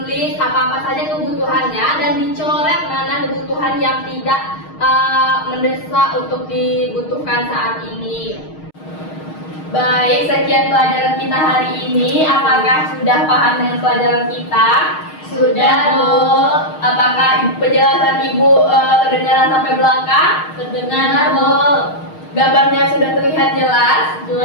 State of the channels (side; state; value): right; late; 6.4 ms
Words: apa-apa saja kebutuhannya dan dicoret mana kebutuhan yang tidak mendesak untuk dibutuhkan saat ini. Baik, sekian pelajaran kita hari ini. Apakah sudah paham dengan pelajaran kita? Sudah, Bu. Apakah penjelasan Ibu kedengaran sampai belakang? Terdengar, Bu. Gambarnya sudah terlihat jelas?